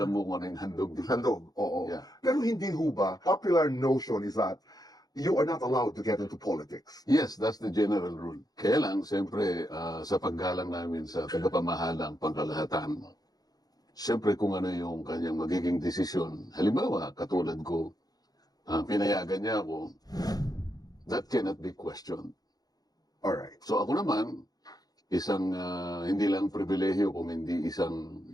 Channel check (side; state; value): right; late; 0.19 ms